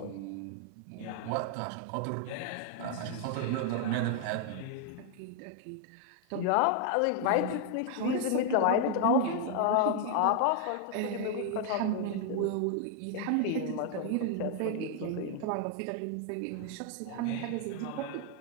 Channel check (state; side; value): different; both; correlation 0.00